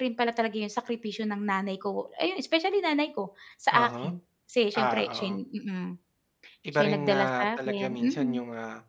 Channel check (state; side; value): identical; both; correlation 1.00